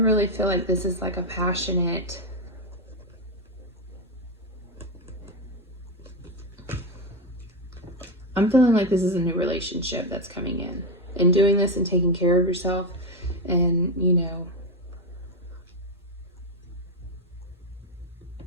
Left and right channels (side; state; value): both; normal; correlation 0.10